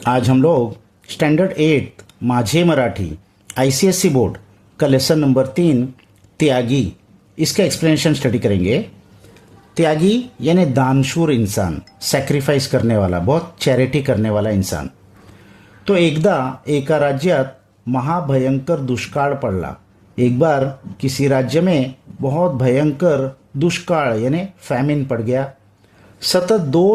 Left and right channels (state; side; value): identical; both; correlation 1.00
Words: आज हम लोग standard 8 माझे मराठी आईसीएससी बोर्ड का लेसन नंबर 3 त्यागी इसका एक्सप्लेनेशन स्टडी करेंगे। त्यागी यानी दानशूर इंसान, सैक्रिफाइस करने वाला, बहुत चैरिटी करने वाला इंसान। तो एकदा एका राज्यात महाभयंकर दुष्काळ पडला। एक बार किसी राज्य में बहुत भयंकर दुष्काळ यानी फैमिन पड़ गया। सतत